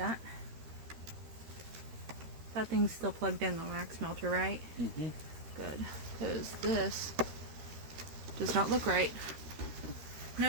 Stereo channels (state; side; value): late; left; 13 ms